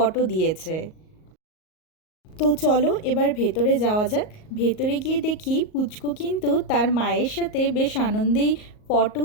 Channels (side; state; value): right; late; 38 ms